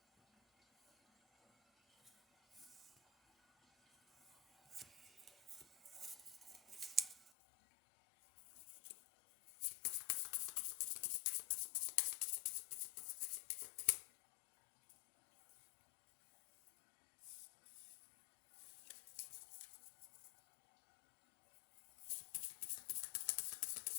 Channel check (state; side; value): drops out; right; at 7.3 s